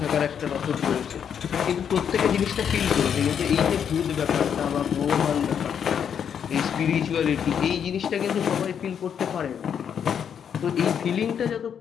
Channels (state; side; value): quieter; right; 8.0 dB